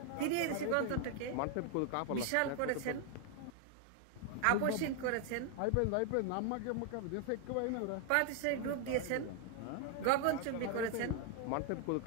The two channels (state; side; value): different; both; correlation 0.00